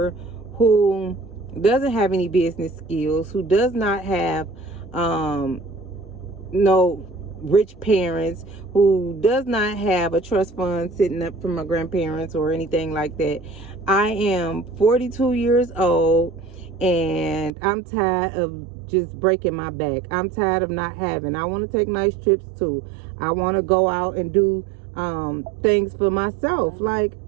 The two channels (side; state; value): left; drops out; at 17.5 s